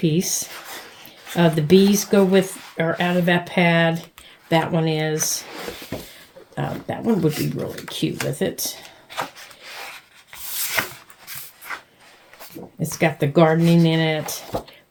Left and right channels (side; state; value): both; identical; correlation 1.00